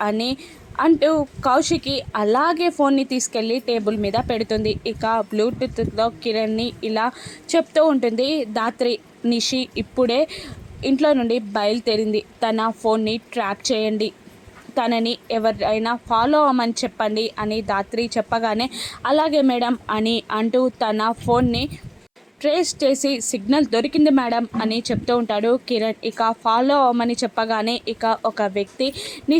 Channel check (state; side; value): identical; both; correlation 1.00